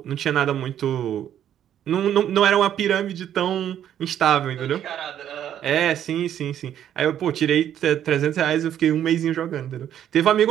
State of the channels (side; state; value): left; quieter; 10.4 dB